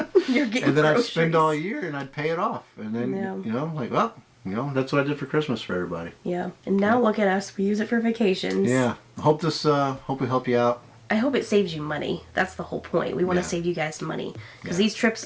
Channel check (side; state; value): both; identical; correlation 1.00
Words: You're getting And then I'd groceries. spend all year and I'd pay it off. And then Yeah. you know, like, well, you know, that's what I did for Christmas for everybody. Yeah. And now look at us. We use it for vacations. Yeah. Hope we help you out. I hope it saves you money. That's the whole point. We want to Yeah. save you guys money because Yeah. these trips